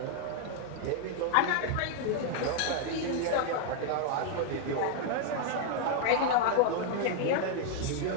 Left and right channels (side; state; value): both; different; correlation 0.00